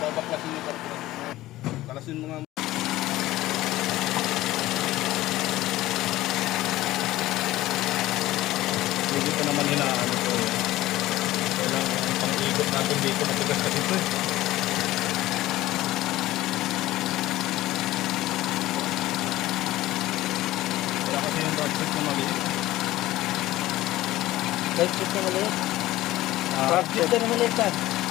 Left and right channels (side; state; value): right; quieter; 16.3 dB